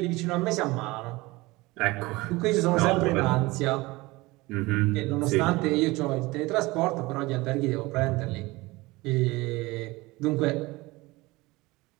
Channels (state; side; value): quieter; left; 21.5 dB